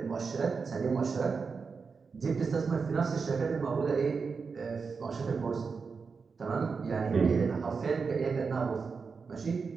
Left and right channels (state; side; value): quieter; left; 5.1 dB